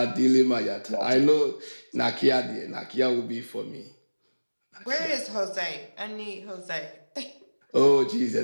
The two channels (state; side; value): inverted; both; correlation -1.00